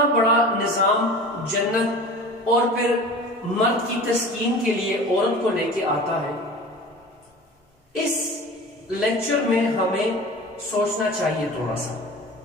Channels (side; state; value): both; normal; correlation 0.38